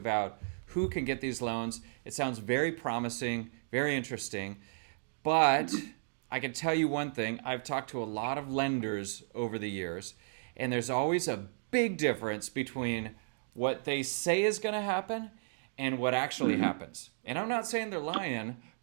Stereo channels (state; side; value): silent; left; digital silence